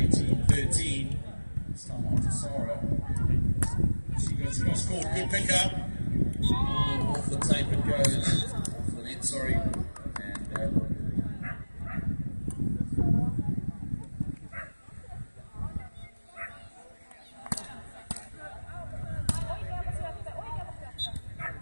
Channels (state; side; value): inverted; both; correlation -1.00